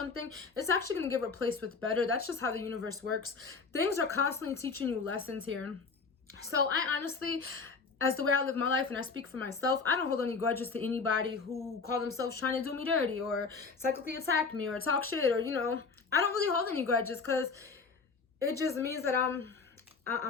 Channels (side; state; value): right; quieter; 4.7 dB